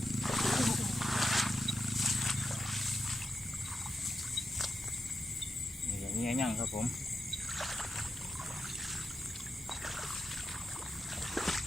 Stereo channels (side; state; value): both; normal; correlation 0.87